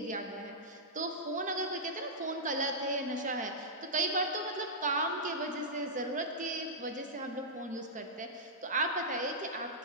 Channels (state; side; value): normal; both; correlation -0.12